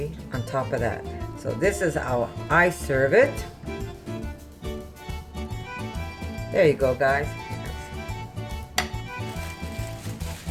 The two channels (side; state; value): both; identical; correlation 1.00